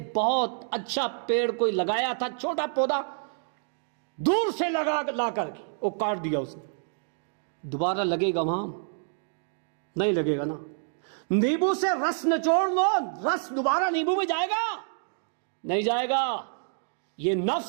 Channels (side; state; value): left; silent; digital silence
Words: بہت اچھا پیڑ کوئی لگایا تھا، چھوٹا پودا دور سے لا کر کے وہ کاٹ دیا اس نے، دوبارہ لگے گا وہاں، نہیں لگے گا نا. نیبو سے رس نچوڑ لو، رس دوبارہ نیبو میں جائے گا، نہیں جائے گا. یہ